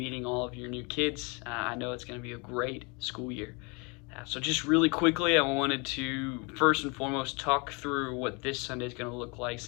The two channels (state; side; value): quieter; right; 30.7 dB